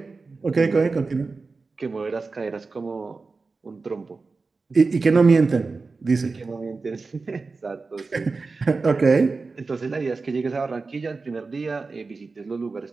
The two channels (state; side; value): quieter; left; 4.1 dB